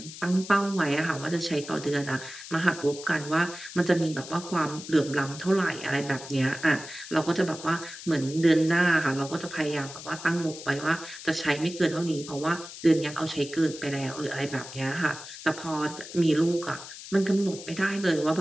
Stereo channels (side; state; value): left; noise; hiss, 13 dB below the sound